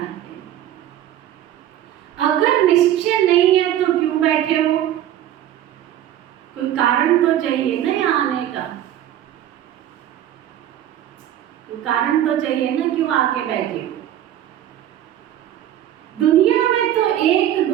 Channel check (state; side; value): quieter; left; 11.8 dB